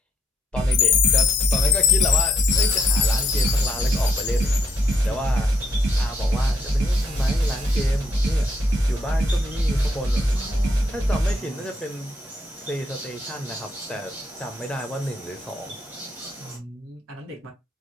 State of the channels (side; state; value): both; normal; correlation 0.72